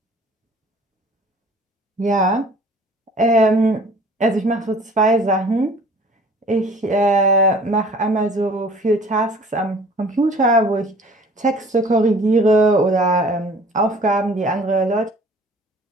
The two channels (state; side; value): normal; both; correlation 0.50